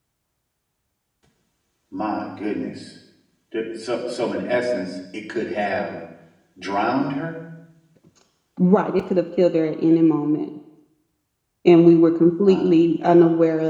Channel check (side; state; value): both; identical; correlation 1.00